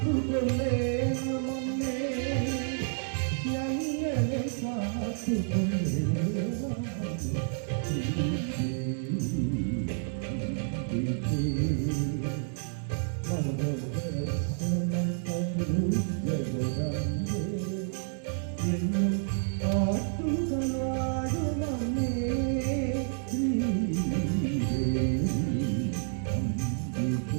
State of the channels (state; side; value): silent; left; digital silence